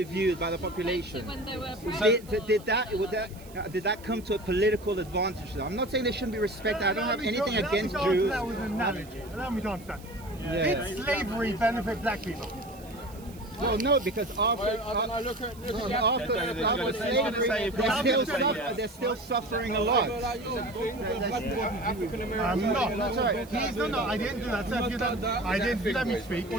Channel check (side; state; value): right; noise; hiss, 22 dB below the sound